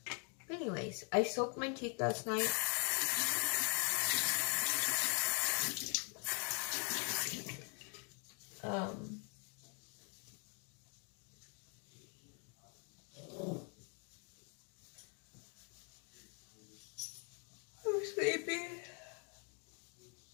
Anyways, I soaked my teeth last night. I'm sleepy.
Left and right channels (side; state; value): right; quieter; 38.2 dB